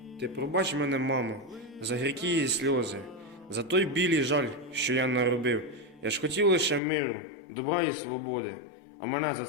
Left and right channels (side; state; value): right; drops out; at 6.8 s